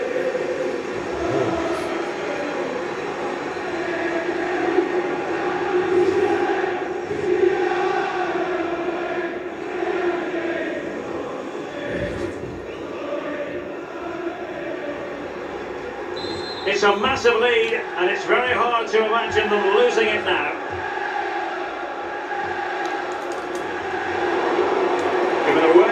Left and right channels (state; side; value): identical; both; correlation 1.00